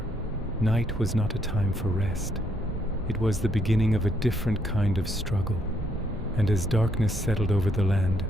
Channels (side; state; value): both; normal; correlation 0.73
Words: night was not a time for rest. It was the beginning of a different kind of struggle. And as darkness settled over the land,